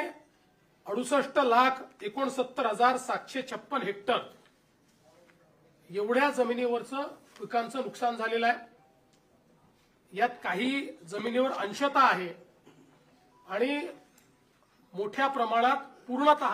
68,69,756 हेक्टर एवढ्या जमिनीवरचं पिकांचं नुकसान झालेलं आहे। यात काही जमिनीवर अंशतः आहे आणि मोठ्या प्रमाणात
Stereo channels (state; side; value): identical; both; correlation 1.00